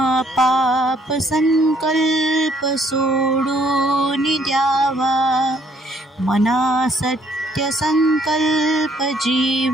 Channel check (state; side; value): normal; both; correlation 0.66